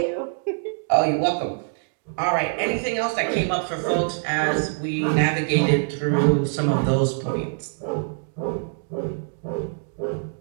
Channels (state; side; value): silent; left; digital silence